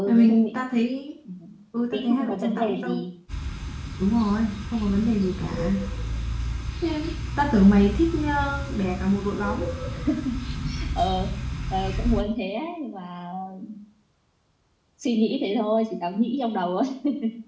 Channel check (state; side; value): identical; both; correlation 1.00